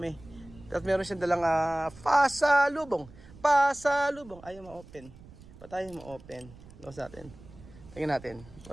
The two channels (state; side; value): noise; right; rumble, 20 dB below the sound